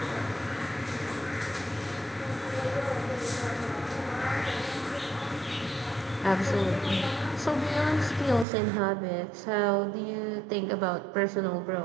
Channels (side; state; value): left; drops out; at 8.5 s